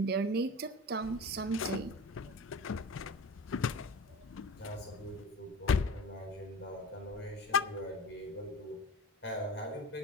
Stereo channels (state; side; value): normal; both; correlation 0.34